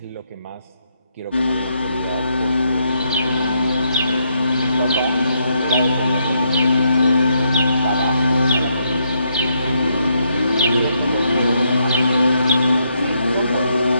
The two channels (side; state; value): both; inverted; correlation -0.76